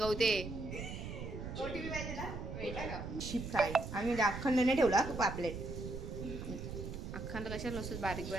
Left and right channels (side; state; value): right; noise; rumble, 7 dB below the sound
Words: शिप फ्राय आम्ही म्हणजे अखंड नाही ठेवला पापलेट. अखंड कशाला नसतं, बारीक